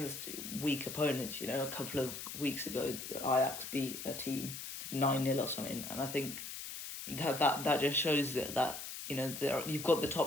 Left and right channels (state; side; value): noise; left; hiss, 8 dB below the sound